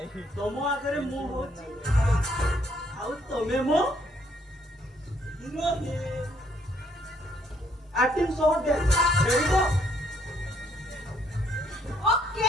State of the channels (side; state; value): both; normal; correlation 0.68